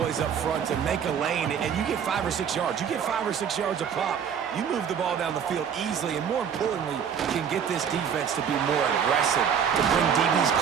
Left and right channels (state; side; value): quieter; left; 7.8 dB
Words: up front to make a lane, and you get 5 or 6 yards. You get 5 or 6 yards a pop. You move the ball down the field easily, and more importantly, you can get this defense to be more aggressive, to bring DBs